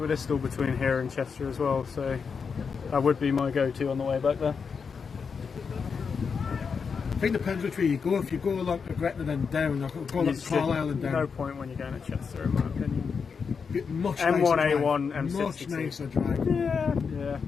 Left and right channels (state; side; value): quieter; right; 5.8 dB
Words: between here and Chester as well, so that would be my go-to on the way back there. I think it depends which way you go. If you go along to Gretna and down, or go along to Carlisle and down. No point when you're going to Chester, in my opinion. Much M1, nicer A1, drive. M62. Much nicer drive. Yeah.